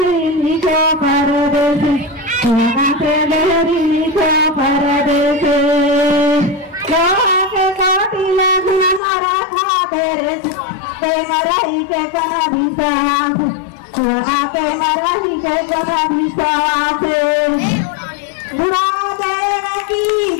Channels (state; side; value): drops out; right; at 9.0 s